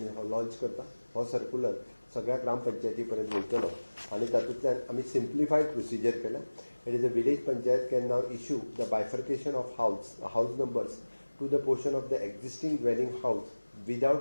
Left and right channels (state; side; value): inverted; both; correlation -1.00